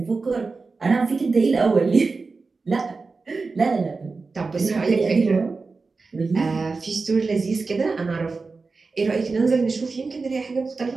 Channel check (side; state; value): left; quieter; 4.1 dB